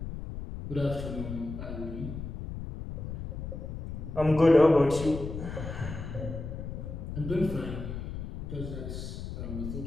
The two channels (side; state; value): left; noise; rumble, 7 dB below the sound